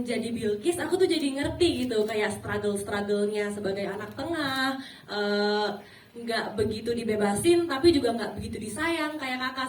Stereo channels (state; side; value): identical; both; correlation 1.00